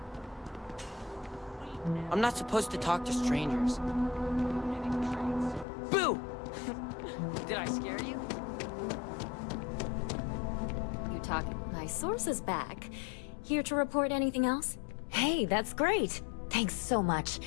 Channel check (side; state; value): right; drops out; at 5.7 s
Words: I'm not supposed to talk to strangers. Boo! Did I scare you? You talking? My source is back. Here to report anything else? Hey, that's great. Thanks so much.